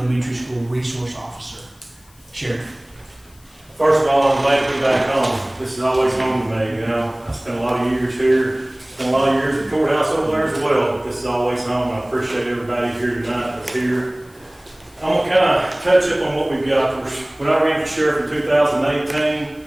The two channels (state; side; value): noise; left; hiss, 28 dB below the sound